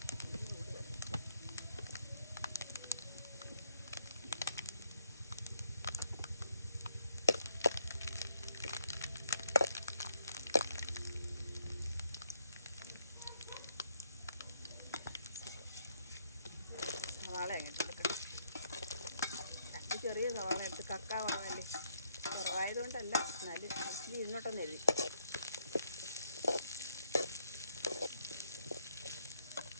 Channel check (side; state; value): both; inverted; correlation -0.70